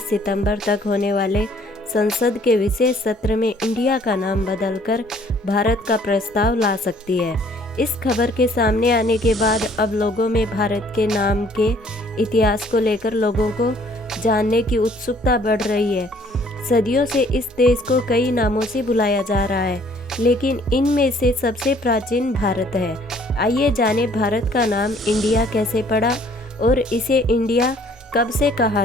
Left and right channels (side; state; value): both; normal; correlation 0.59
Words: सितंबर तक होने वाले संसद के विशेष सत्र में इंडिया का नाम बदलकर भारत का प्रस्ताव ला सकती है। इस खबर के सामने आने के बाद अब लोगों में भारत के नाम के इतिहास को लेकर लोगों को जानने की उत्सुकता बढ़ रही है। सदियों से इस देश को कई नामों से बुलाया जा रहा है, लेकिन इनमें से सबसे प्राचीन भारत है। आइए जानें भारत का नाम इंडिया कैसे पड़ा और इसे इंडिया कब से कहा